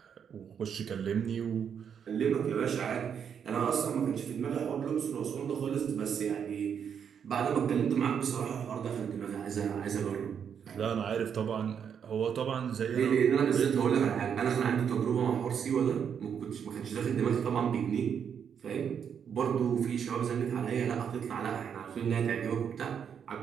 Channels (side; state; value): left; quieter; 7.7 dB